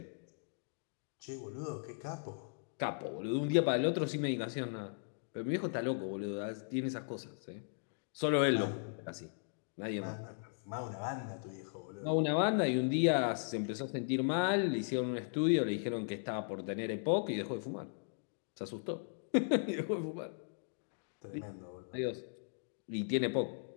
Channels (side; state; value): right; silent; digital silence